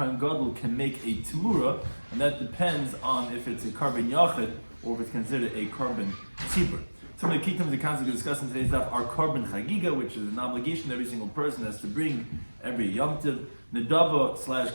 Gadol can make a temura, and that depends on if it's a carbon yachid or if it's considered a carbon tzibur. Some of the key terms the concept we discuss in today's daf are carbon chagiga, which is an obligation every single person has to bring every Yom Tov. Nedava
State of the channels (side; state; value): both; inverted; correlation -1.00